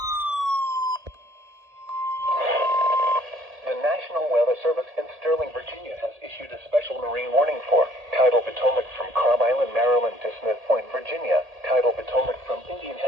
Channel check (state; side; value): late; left; 1.8 ms